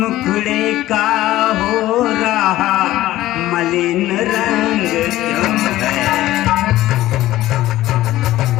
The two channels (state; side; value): quieter; right; 15.4 dB